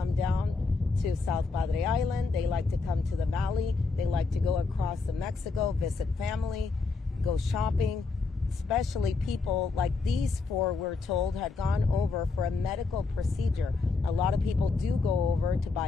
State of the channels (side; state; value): right; quieter; 4.2 dB